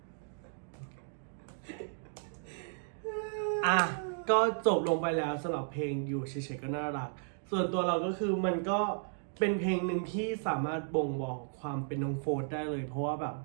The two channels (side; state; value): left; silent; digital silence